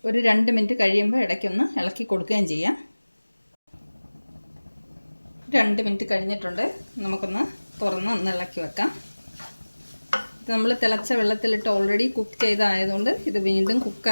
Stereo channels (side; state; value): both; inverted; correlation -1.00